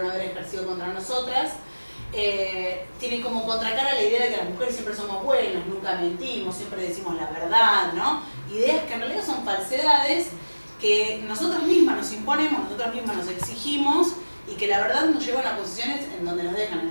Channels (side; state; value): both; inverted; correlation -1.00